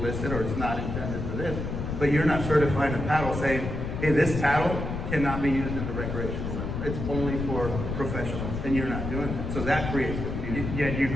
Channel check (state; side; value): noise; left; rumble, 4 dB below the sound